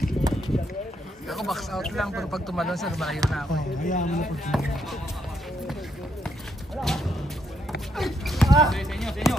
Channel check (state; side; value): normal; both; correlation 0.75